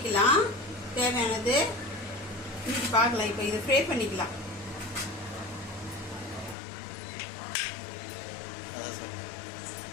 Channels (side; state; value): right; drops out; at 6.6 s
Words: தேவையானது இன்னைக்கு பார்க்கலாம். இப்போ இதை ஃப்ரை பண்ணிக்கலாம்.